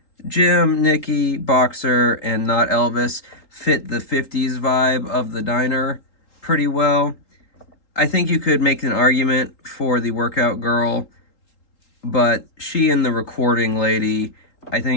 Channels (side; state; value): right; late; 3.8 ms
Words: Jim, Nikki, Boxer, and Not Elvis, fit the 50s vibe of the diner pretty well. I think you could make an argument for the workout girl, but she and the recording lady, I